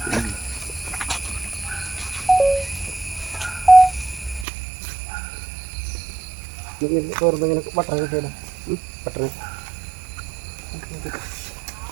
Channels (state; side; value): drops out; left; at 4.5 s